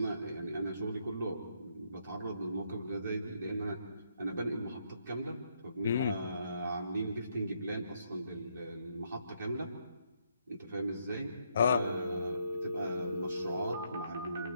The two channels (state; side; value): inverted; both; correlation -0.75